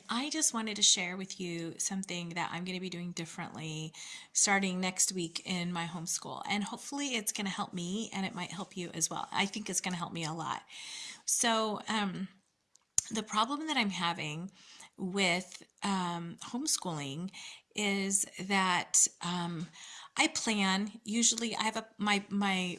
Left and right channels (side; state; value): both; identical; correlation 1.00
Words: I just wanted to share with you something that I'm going to be doing differently starting next week in my homeschool. And hopefully it's going to help me and it might help you as well. I think it's going to help me a lot. So, the problem that I'm having with homeschooling is that I plan. Usually, I have my